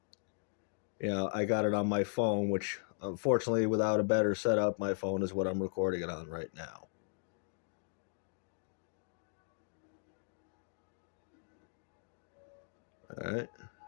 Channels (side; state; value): right; silent; digital silence